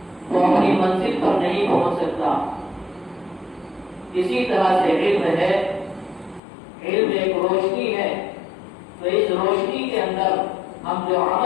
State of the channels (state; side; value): drops out; right; at 6.4 s